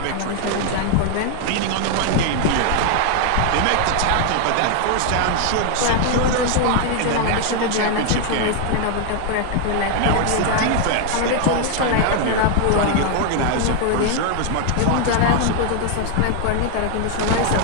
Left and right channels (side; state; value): both; different; correlation 0.00